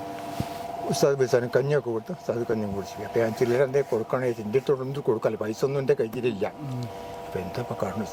ഉസ്താദ് ബിസാനും കഞ്ഞിയൊക്കെ കൊടുത്ത് ഉസ്താദ് കഞ്ഞിയും കുടിച്ചു. അപ്പോൾ ഞാൻ ചില്ലറ എന്തേ കൊടുക്കണേ എൻ്റെ അടുത്തൊന്നും കൊടുക്കാമല്ലോ, പൈസ ഒന്നും എൻ്റെ കയ്യിലില്ല. അപ്പോൾ എന്താ ഇപ്പോൾ കാണുന്നു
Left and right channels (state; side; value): identical; both; correlation 1.00